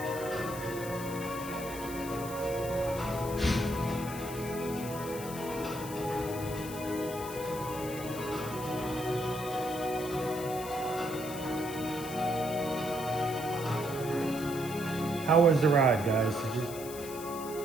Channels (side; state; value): left; noise; hiss, 12 dB below the sound